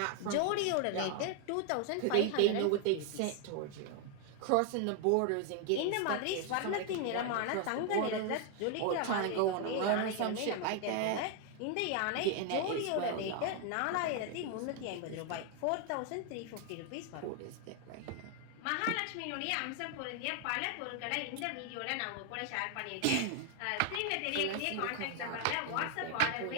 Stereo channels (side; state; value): both; different; correlation 0.00